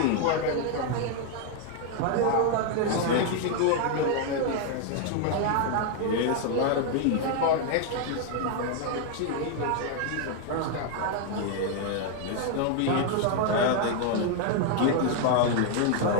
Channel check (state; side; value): different; both; correlation 0.00